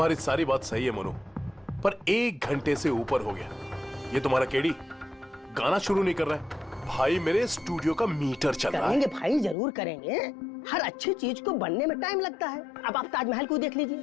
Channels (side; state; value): right; drops out; at 9.6 s